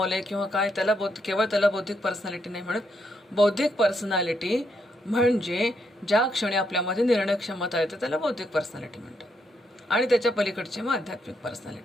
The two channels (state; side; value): normal; both; correlation 0.77